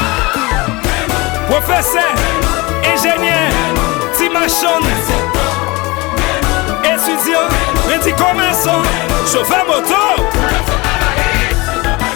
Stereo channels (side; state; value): right; quieter; 24.1 dB